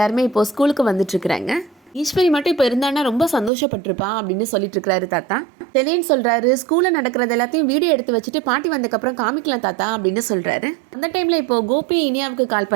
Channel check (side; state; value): left; drops out; at 3.5 s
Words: இப்போது ஸ்கூலுக்கு வந்துட்டுருக்குறாங்க. ஈஸ்வரி மட்டும் இப்போ இருந்தானா ரொம்ப சந்தோஷப்பட்டிருப்பா அப்படின்னு சொல்லிட்டு இருக்கிறாரு தாத்தா. செலியன் சொல்கிறாரு, ஸ்கூலில் நடக்கிறது எல்லாத்தையும் வீடியோ எடுத்து வச்சுட்டு பாட்டி வந்ததுக்கப்புறம் காமிக்கலாம் தாத்தா அப்படின்னு சொல்கிறாரு. அந்த டைமில் இப்போது கோபி இனியாவுக்கு கால்